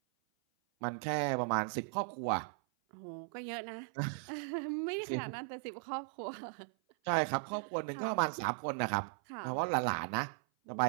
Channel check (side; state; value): left; silent; 53 dB below the other